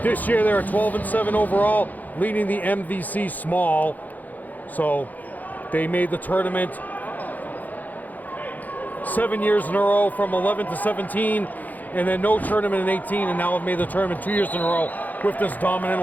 This year, they're 12-7 overall, leading the MVC Small. So they made the tournament 7 years in a row, from 11 to 17, and then no tournament in 18, and now have made the tournament 2 years in a row with this dominant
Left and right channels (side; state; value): right; late; 0.082 ms